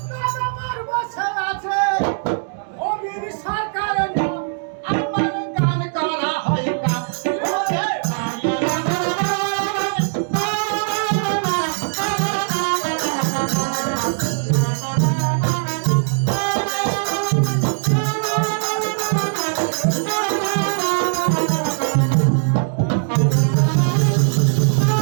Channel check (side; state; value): left; silent; digital silence